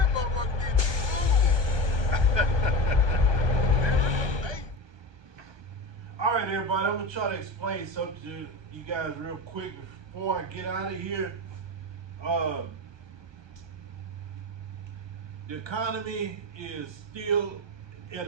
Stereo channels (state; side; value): late; left; 1.2 ms